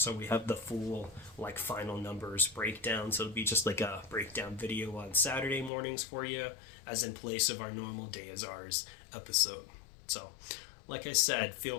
we have the full final numbers breakdown. So it'll be just like a breakdown video on Saturday mornings for you, as in place of our normal Day Is Ours episode. So, like I said, feel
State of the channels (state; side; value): drops out; right; at 5.7 s